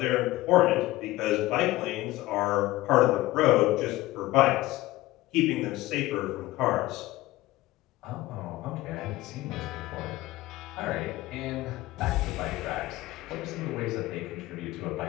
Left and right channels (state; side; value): quieter; right; 17.7 dB